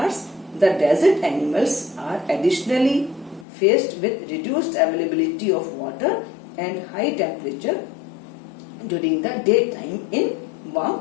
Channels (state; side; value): drops out; right; at 3.5 s